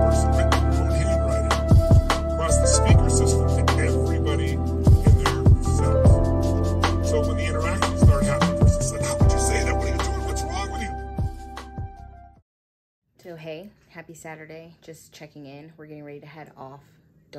So hey, happy Saturday, just checking in. We're getting ready to head off.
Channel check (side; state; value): both; identical; correlation 1.00